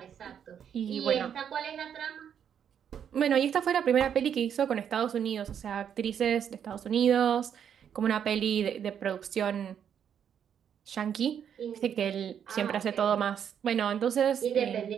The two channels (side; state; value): left; quieter; 8.5 dB